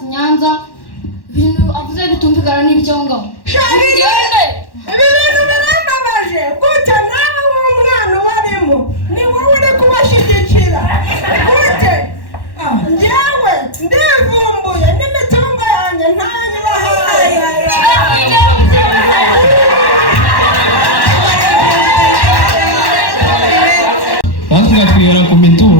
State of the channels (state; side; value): late; right; 1.1 ms